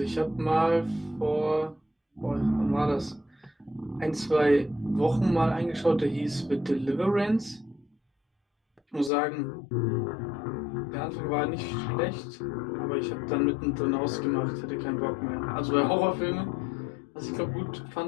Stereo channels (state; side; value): drops out; right; at 9.1 s